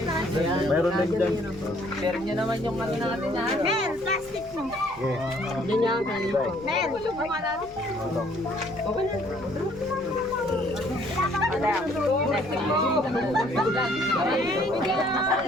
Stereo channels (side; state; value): left; noise; rumble, 21 dB below the sound